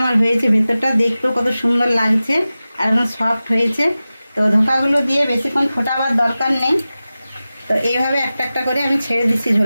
আমার হয়েছে, ভিতরটা দেখতেও কত সুন্দর লাগছে আর একদম সফট হয়েছে। তো ধোকাগুলো দিয়ে বেশিক্ষণ ফোটাবার দরকার নেই। তো এইভাবে একটা একটা করে আমি ছেড়ে দিচ্ছি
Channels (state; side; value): inverted; both; correlation -0.95